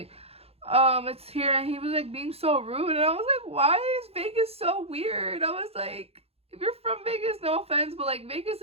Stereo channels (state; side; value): late; left; 0.29 ms